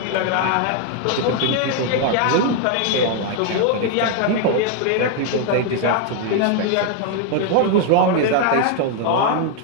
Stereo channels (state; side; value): different; both; correlation 0.00